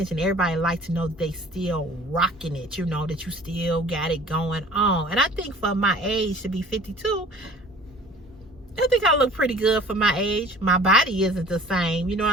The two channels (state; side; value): normal; both; correlation 0.48